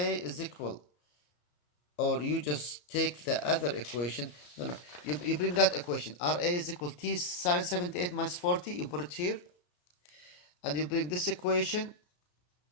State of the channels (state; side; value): late; right; 34 ms